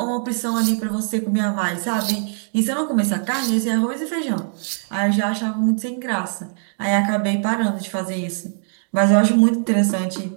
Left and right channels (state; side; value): silent; left; 65 dB below the other